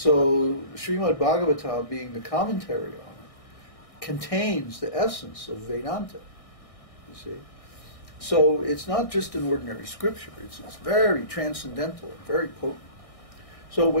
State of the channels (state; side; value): late; right; 1.6 ms